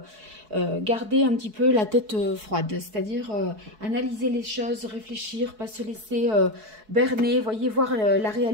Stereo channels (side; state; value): left; late; 4.6 ms